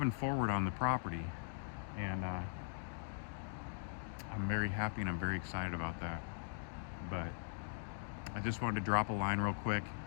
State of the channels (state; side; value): silent; right; digital silence